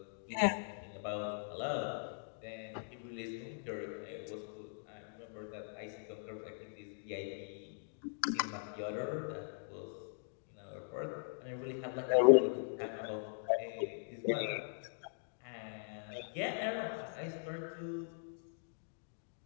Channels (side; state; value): right; silent; digital silence